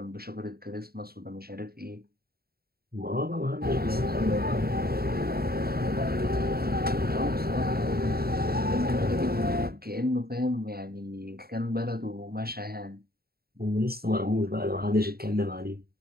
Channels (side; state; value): left; late; 0.45 ms